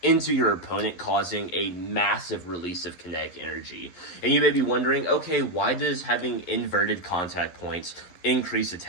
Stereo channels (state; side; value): late; right; 11 ms